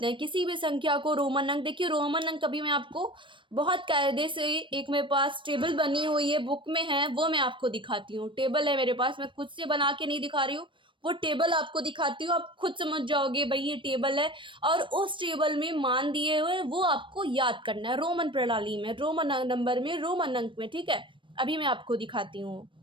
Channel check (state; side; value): late; left; 0.24 ms